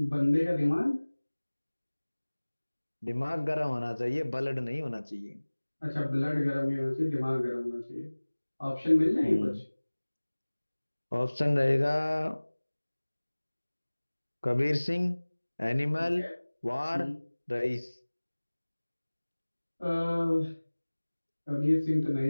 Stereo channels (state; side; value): inverted; both; correlation -1.00